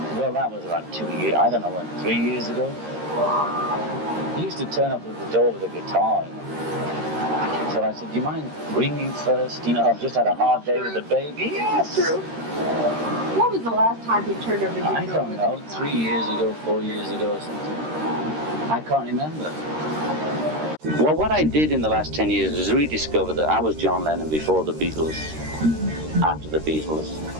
Well, that was about 2 years, I don't know when, 3 years ago. He used to turn up at the door with a guitar. So I said, do you mind ringing first? You know, I've just had a hard day with the baby. Yes. True. What was the last time he turned over your door? I don't know, 3 years ago, 4 years ago or something. I can't remember. Well, what I did in the last 10 years was rediscover that I was John Lennon before the Beatles, after the Beatles,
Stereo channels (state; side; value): late; left; 13 ms